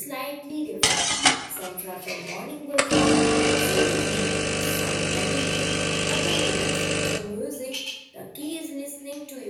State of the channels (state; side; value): identical; both; correlation 1.00